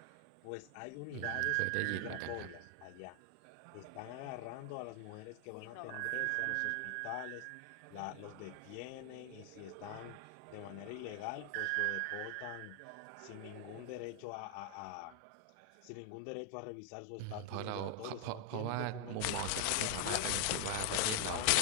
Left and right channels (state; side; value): different; both; correlation 0.00